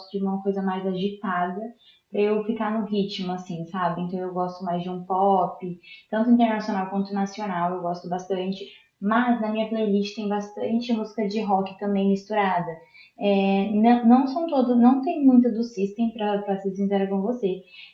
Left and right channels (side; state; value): both; identical; correlation 1.00